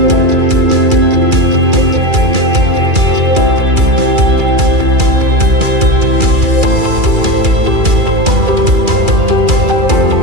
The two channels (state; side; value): late; left; 2.3 ms